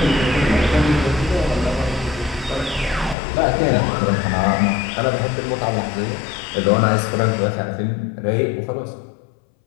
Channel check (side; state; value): right; drops out; at 3.2 s